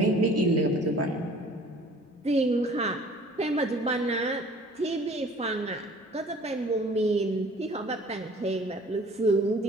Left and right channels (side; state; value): both; normal; correlation 0.51